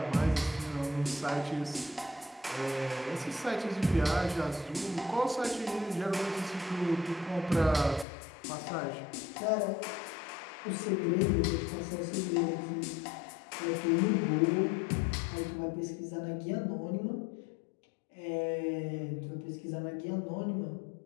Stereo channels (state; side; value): drops out; right; at 8.1 s